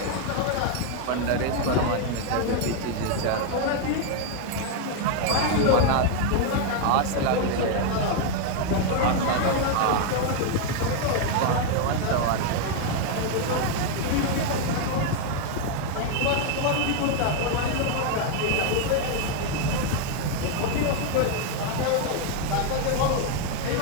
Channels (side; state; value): both; different; correlation 0.01